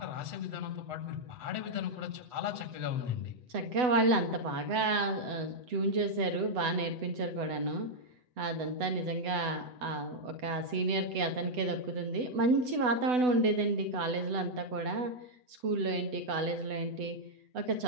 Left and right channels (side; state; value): left; late; 8.0 ms